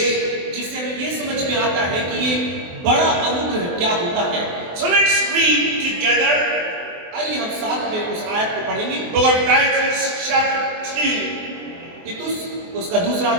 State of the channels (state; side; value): late; left; 23 ms